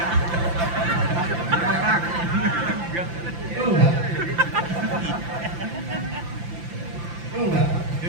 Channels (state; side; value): late; left; 5.8 ms